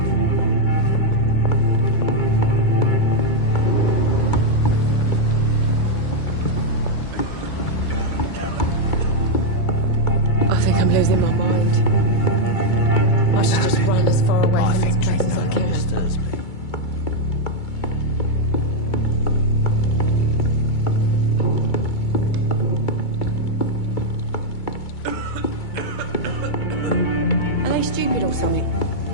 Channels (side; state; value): right; late; 2.3 ms